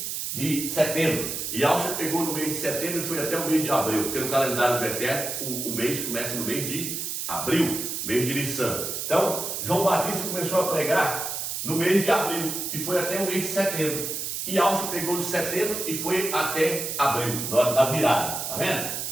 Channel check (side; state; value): right; noise; hiss, 4 dB below the sound